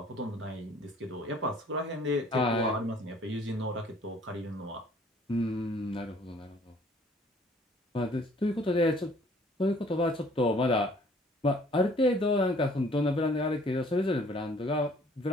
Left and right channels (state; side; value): normal; both; correlation 0.57